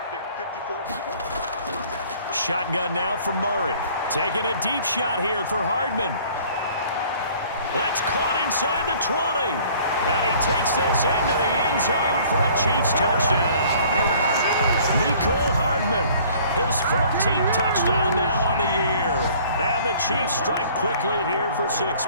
54. Shotgun now from Murray. Taking a deep shot here for Hardman. That's caught inside the 20. And he takes this into the end zone for a Chiefs touchdown. Mecole Hardman. His 14th touchdown now on the year. And the Chiefs strike quickly here for 6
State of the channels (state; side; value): inverted; both; correlation -0.53